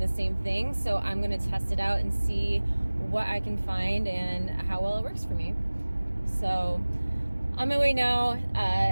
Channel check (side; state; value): both; inverted; correlation -1.00